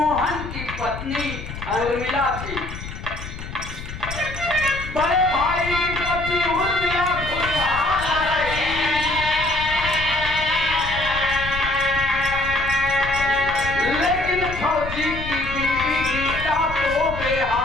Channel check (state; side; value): noise; left; rumble, 9 dB below the sound